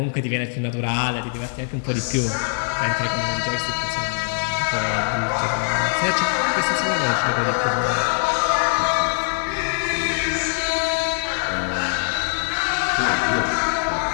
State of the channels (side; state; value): right; silent; 64 dB below the other